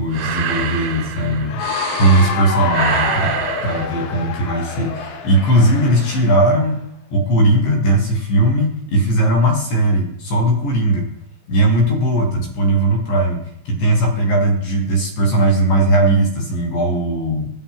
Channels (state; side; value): late; right; 15 ms